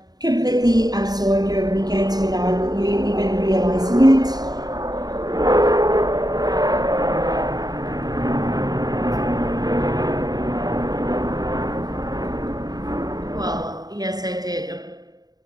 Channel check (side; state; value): left; late; 0.19 ms